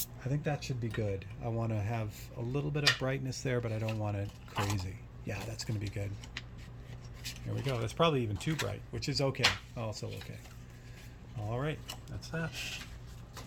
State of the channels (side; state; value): both; identical; correlation 1.00